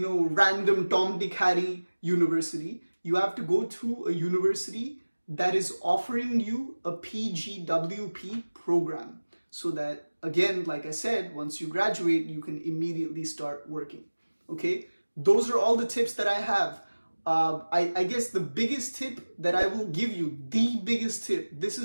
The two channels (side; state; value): both; inverted; correlation -1.00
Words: Tom, Dick, Harry university. You have to go to a university that is offering you a PGWP program, so that, again, like I said, once you graduate, you can immediately start working. Okay, those are all the tips that I have. I guess the biggest tip that I will give you, the biggest tip, this